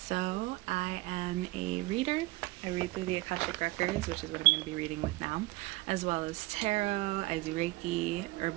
So, I am a reader. I read through the Akashic Records, which is what I'm going to be reading with now, as well as tarot. I do Reiki,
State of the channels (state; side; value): quieter; left; 20.6 dB